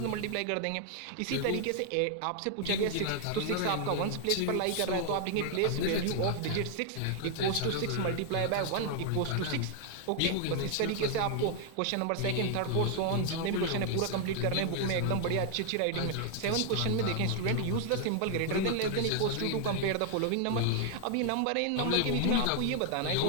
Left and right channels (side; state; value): both; different; correlation 0.00